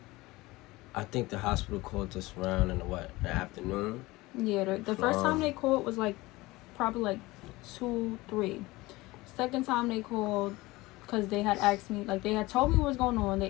I think the hospital called us around in the afternoon. Yeah, the first time they called was like probably like 2, 3. Second time they called, because they had asked me, like they had told me what was going on.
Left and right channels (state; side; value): quieter; right; 20.5 dB